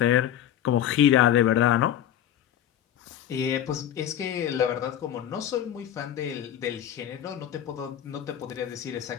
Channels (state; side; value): quieter; right; 10.6 dB